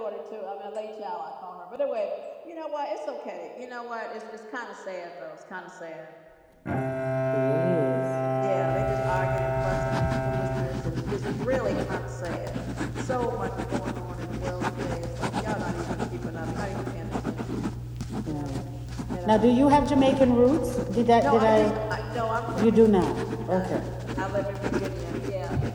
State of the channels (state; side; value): identical; both; correlation 1.00